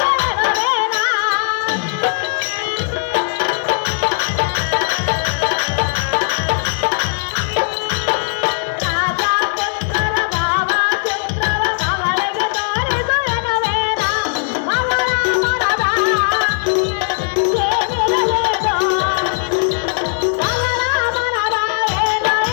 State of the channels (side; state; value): right; silent; 63 dB below the other